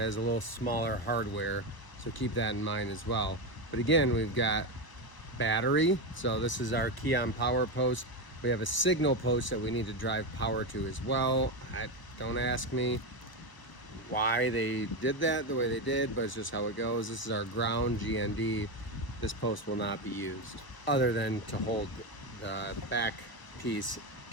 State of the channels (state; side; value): late; right; 1.0 ms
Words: a little smaller hardware, so keep that in mind as well. But again, we've got battery, so this is our key on power post. We have a signal post that we need to drive power to as well. Don't ask me why they did that the way they did, but it's just how it goes. This is our ground GND. This post will not be used other than to hold the back piece